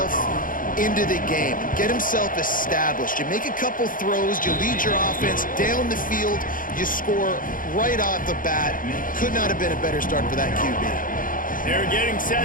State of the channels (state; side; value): late; right; 0.40 ms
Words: into the game, get himself established. You make a couple throws, you lead your offense down the field, you score right off the bat. Could not have been a better start for that QB. They're getting